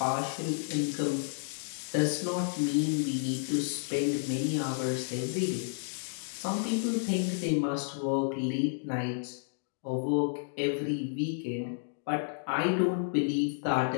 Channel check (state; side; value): silent; right; digital silence